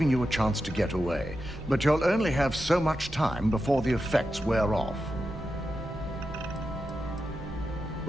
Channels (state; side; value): normal; both; correlation 0.89